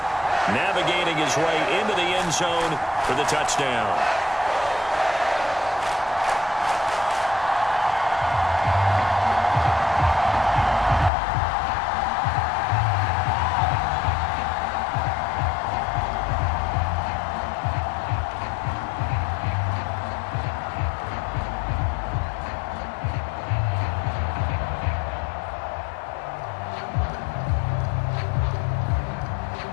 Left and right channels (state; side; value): drops out; right; at 11.1 s